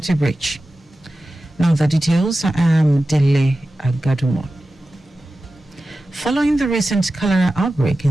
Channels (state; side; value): normal; both; correlation 0.94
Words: breach. Now the details. I am Dele Agadumo. Following the recent cholera outbreak in